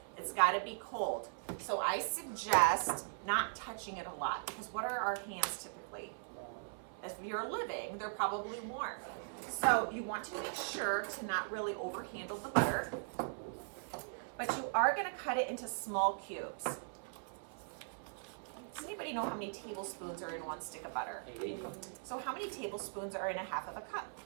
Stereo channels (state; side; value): silent; left; 51 dB below the other